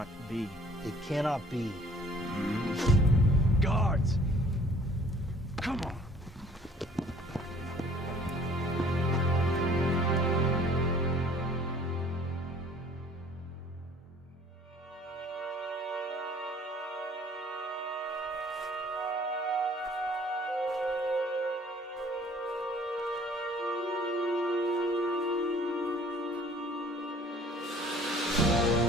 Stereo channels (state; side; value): normal; both; correlation 0.55